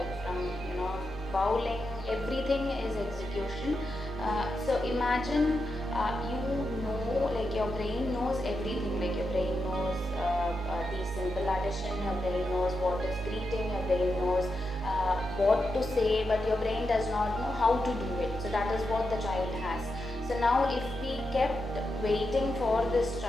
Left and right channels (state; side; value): normal; both; correlation 0.87